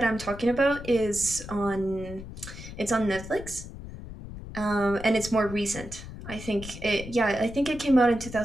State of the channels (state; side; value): noise; left; rumble, 12 dB below the sound